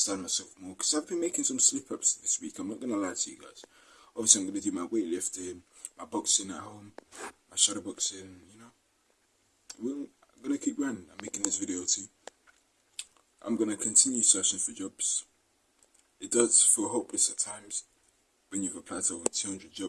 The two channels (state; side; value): identical; both; correlation 1.00